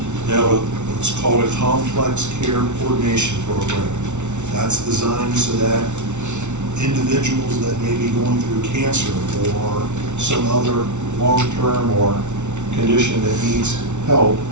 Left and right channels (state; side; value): late; left; 0.83 ms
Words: They have what's called a complex care coordination program. That's designed so that individuals that may be going through cancer or some other long-term or condition that needs help,